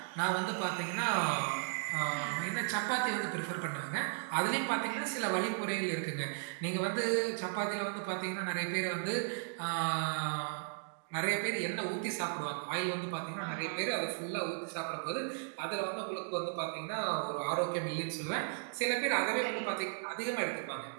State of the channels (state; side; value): silent; left; digital silence